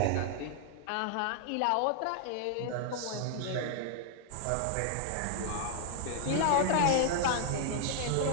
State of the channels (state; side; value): different; both; correlation 0.00